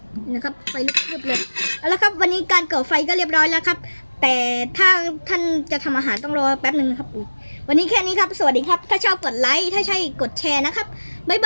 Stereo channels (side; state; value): both; inverted; correlation -1.00